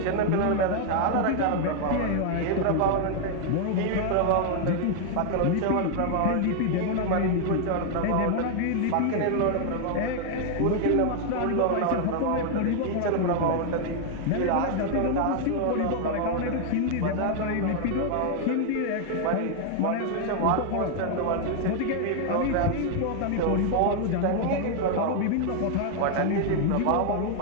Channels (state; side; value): different; both; correlation 0.00